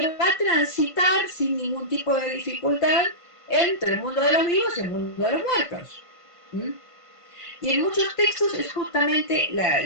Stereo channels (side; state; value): left; late; 1.5 ms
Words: va a transitar sin ningún tipo de dificultad entre el mundo de los vivos y el mundo de los muertos. ¿Mm? Y en muchos textos es justamente